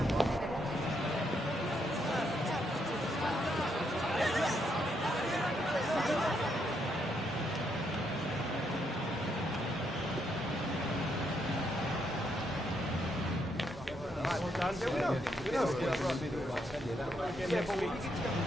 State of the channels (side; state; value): both; normal; correlation 0.77